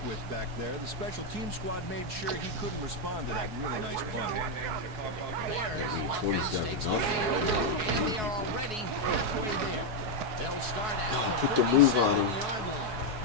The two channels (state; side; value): late; left; 4.7 ms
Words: with back there. The special team squad made sure he couldn't respond to that really nice punt. Bears offense takes the field, and they are already halfway there. They'll start at the put the move on him. 47-yard line.